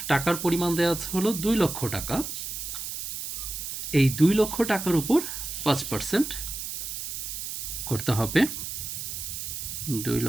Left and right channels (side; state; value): right; noise; hiss, 6 dB below the sound